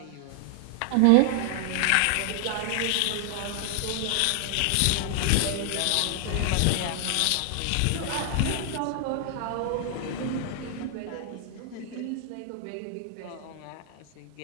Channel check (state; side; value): different; both; correlation 0.00